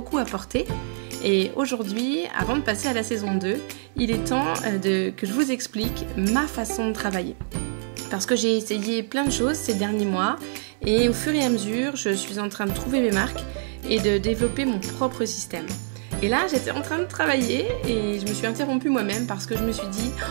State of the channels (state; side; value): silent; left; 62 dB below the other